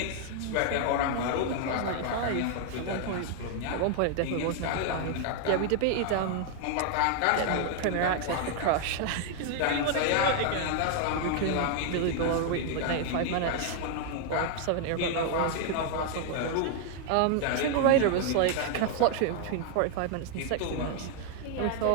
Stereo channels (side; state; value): both; different; correlation 0.00